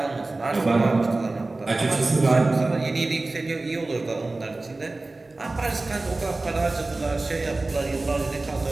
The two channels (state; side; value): quieter; left; 3.2 dB